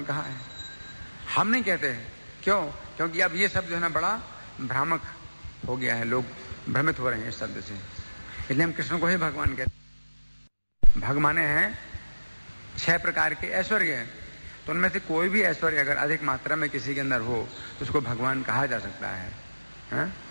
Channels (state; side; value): inverted; both; correlation -1.00